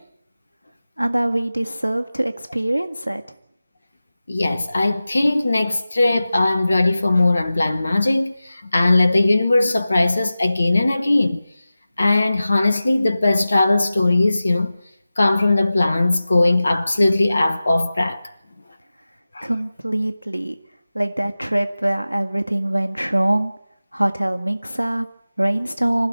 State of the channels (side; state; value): both; inverted; correlation -0.95